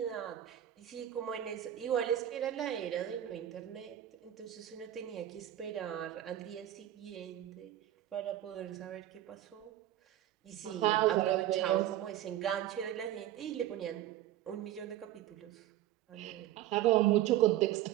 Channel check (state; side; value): quieter; left; 12.8 dB